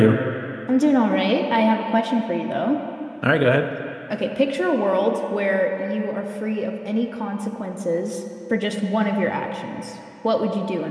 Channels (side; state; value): both; identical; correlation 1.00